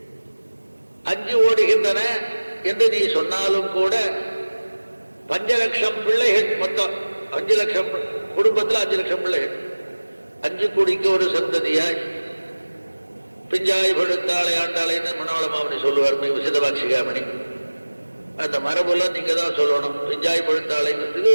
5 ஓடுகின்றன என்று நீ சொன்னாலும் கூட 5 லட்சம் பிள்ளைகள், மொத்தம் 5 லட்சம் குடும்பத்தில் 5 லட்சம் பிள்ளைகள், 5 கோடிக்கு ஒரு சந்ததியாய் பிஞ்சாய் படுத்தாளை ஆண்டாளைன்னு மனோளமாமணி சொல்லுவார், விசிதபாட்சிகாமணி. அந்த மரபுலாம் நீங்க தான் சொல்லணும். பிஞ்சாய் பழுத்தாளைங்கிறதுக்கு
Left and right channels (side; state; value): both; inverted; correlation -1.00